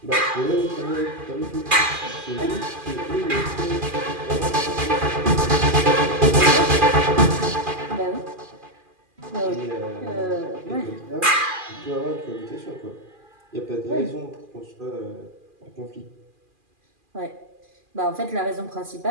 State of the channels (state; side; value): late; left; 2.4 ms